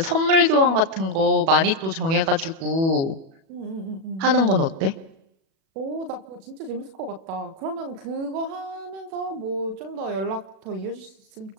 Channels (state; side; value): late; left; 37 ms